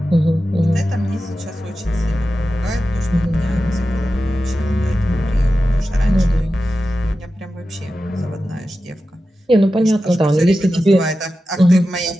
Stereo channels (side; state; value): both; normal; correlation 0.92